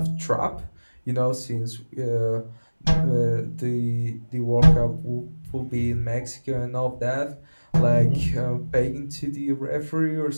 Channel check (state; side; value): inverted; both; correlation -1.00